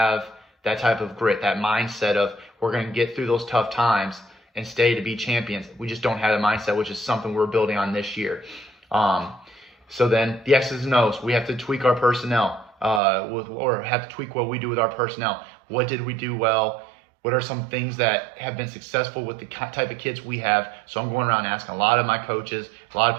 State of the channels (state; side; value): drops out; left; at 13.0 s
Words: that type of grit, that mindset of we're going to get through those tough times and stay to be champions. We just don't have the mindset, which is something we're building on this year. So then the X's and O's, we have to tweak our personnel, or have to tweak what we do with our personnel. What did we do well? What are some things that have been successful with the type of kids we have? So I'm going around asking a lot of my coaches, a lot of